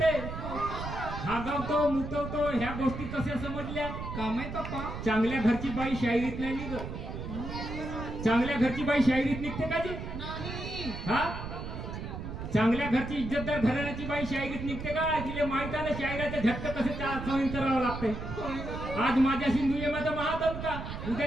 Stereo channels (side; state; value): right; noise; rumble, 7 dB below the sound